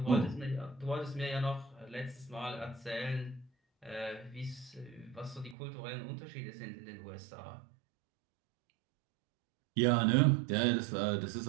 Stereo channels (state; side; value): drops out; left; at 5.6 s